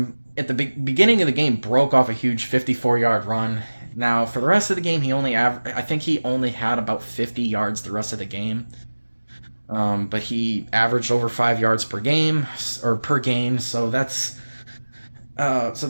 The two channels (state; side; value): inverted; both; correlation -1.00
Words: at the beginning of the game, broke off a huge 54-yard run. Now, for the rest of the game, I think he only had about 50 yards the rest of the game. But he averaged over 5 yards per game, or per game, so that's